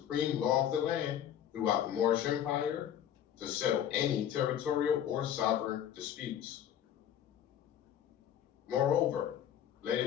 law of the land throughout the Moorish Empire to settle any territorial or sovereign disputes. Moreover, let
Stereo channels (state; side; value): quieter; right; 10.1 dB